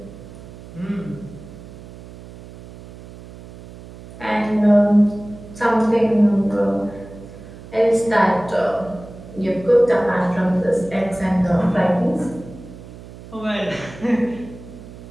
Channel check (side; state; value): right; noise; hum, 17 dB below the sound